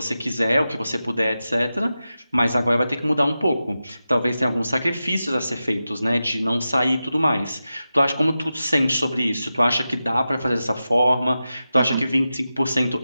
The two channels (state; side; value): inverted; both; correlation -0.92